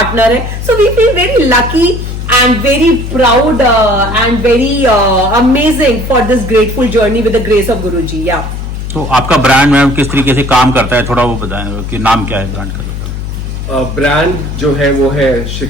है। So we feel very lucky and very proud and very amazing for this grateful journey with the grace of Guruji. Yeah. तो आपका ब्रांड मैम किस तरीके से काम करता है, थोड़ा वो बताएं कि नाम क्या है ब्रांड का? ब्रांड जो है वो है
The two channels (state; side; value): noise; left; hum, 6 dB below the sound